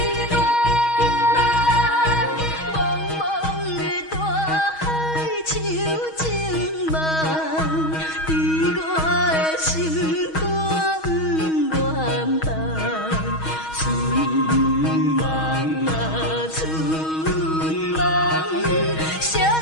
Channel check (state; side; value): late; right; 6.3 ms